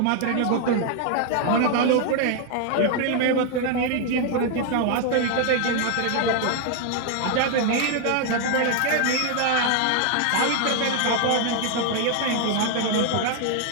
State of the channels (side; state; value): both; different; correlation 0.00